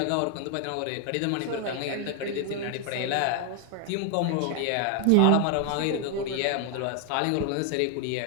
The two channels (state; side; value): different; both; correlation 0.00